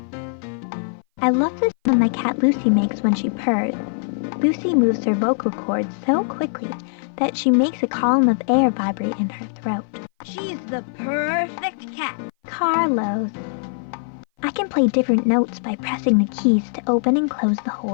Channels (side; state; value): right; silent; 58 dB below the other